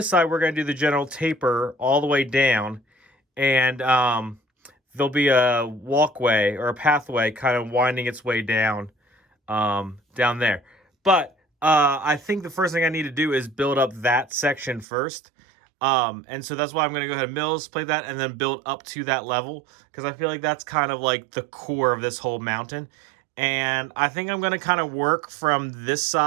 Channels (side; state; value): left; drops out; at 14.9 s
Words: side, we're going to do the general taper all the way down. And there'll be a walkway or a pathway kind of winding its way down down there. But I think the first thing I need to do is build up that section first. And so that's why I'm going to go ahead and mills plate that and then build up to that level. Because I feel like that's kind of like the core of this whole mountain. And I think I'm going to kind of work from this